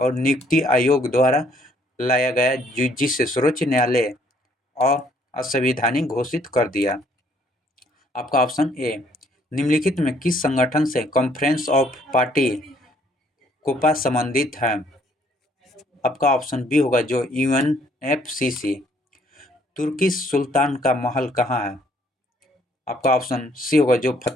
नियुक्ति आयोग द्वारा लाया गया, जिसे सर्वोच्च न्यायालय और असंवैधानिक घोषित कर दिया। आपका ऑप्शन ए, निम्नलिखित में किस संगठन से कॉन्फ्रेंस ऑफ पार्टी कोपा संबंधित है? आपका ऑप्शन बी होगा जो यूएनएफसीसी। तुर्की सुल्तान का महल कहाँ है? आपका ऑप्शन सी होगा जो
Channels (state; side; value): normal; both; correlation 0.64